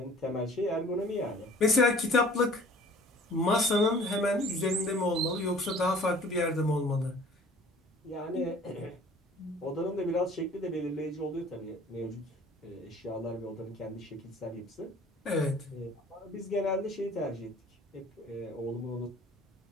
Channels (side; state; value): both; normal; correlation 0.50